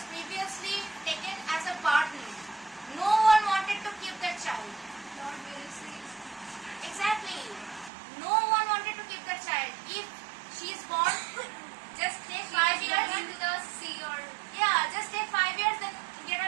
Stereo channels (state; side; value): drops out; left; at 7.9 s